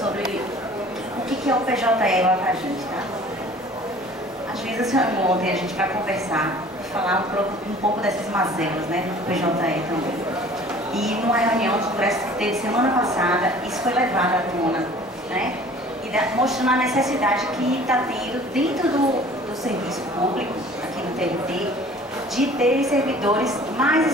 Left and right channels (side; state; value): both; normal; correlation 0.48